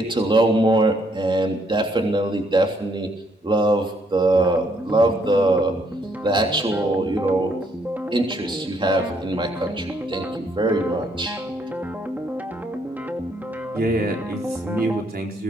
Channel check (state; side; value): normal; both; correlation 0.70